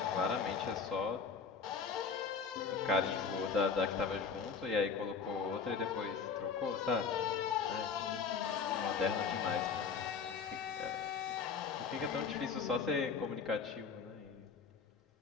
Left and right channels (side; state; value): right; quieter; 5.7 dB